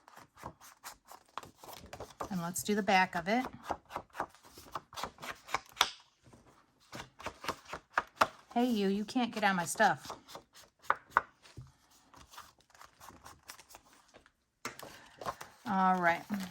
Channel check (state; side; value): identical; both; correlation 1.00